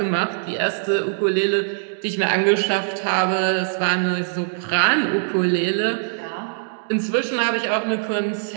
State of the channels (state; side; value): silent; left; digital silence